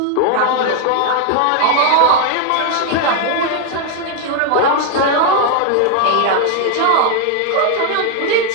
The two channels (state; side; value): different; both; correlation 0.00